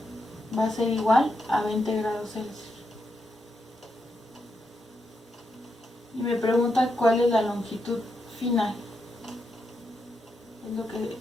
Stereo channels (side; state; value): both; normal; correlation 0.83